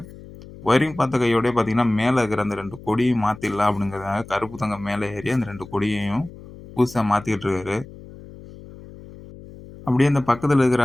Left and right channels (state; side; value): noise; left; hum, 17 dB below the sound